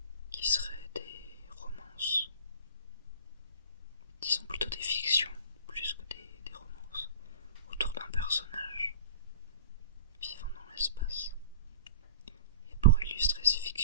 seraient des romances, disons plutôt des fictions plus que des romances, autour d'un personnage vivant dans l'espace. Et pour illustrer ces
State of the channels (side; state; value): both; inverted; correlation -0.39